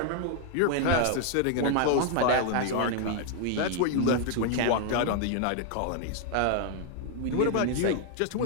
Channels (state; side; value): different; both; correlation 0.00